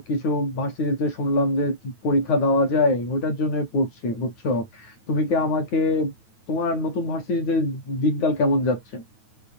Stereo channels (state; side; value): late; right; 9.2 ms